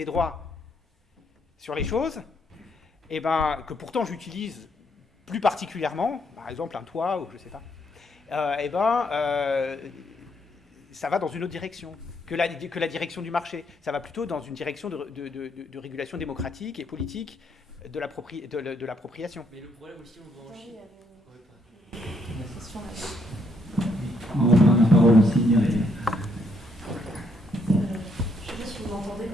droits sur les choses, et ben, que pourtant j'utilise plus particulièrement, par exemple un toit, ou je ne sais pas, ça va dans une autre direction que la direction du marché. Ça va plutôt dans une direction de régulation démocratique et politique de l'appropriation. Mais le problème aussi, on va en Chine. On va prendre la parole aussi, Myriam. Je ne sais pas si vous m'entendez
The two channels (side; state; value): both; normal; correlation 0.73